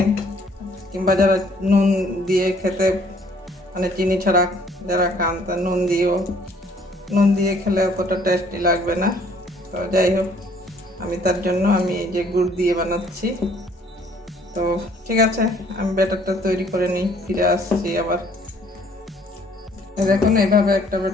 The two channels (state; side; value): normal; both; correlation 0.60